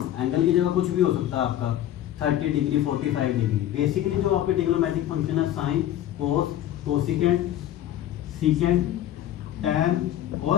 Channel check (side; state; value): right; quieter; 12.2 dB